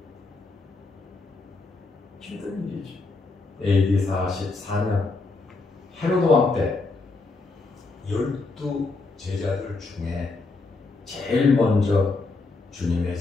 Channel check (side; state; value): right; quieter; 3.7 dB